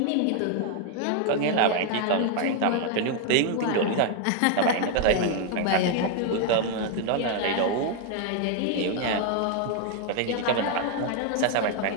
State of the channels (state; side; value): different; both; correlation 0.00